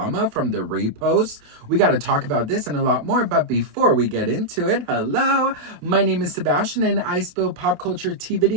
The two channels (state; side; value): late; left; 28 ms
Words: from the reposts. We got to talk about this and a lot more, but before we get into it, hello, my name is Sebastian and I spill pop culture tea